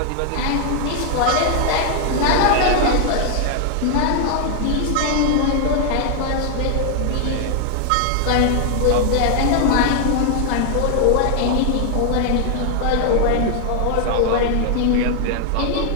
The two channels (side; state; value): both; different; correlation 0.00